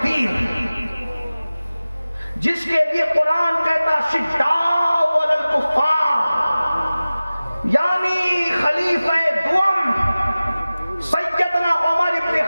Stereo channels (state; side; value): inverted; both; correlation -0.97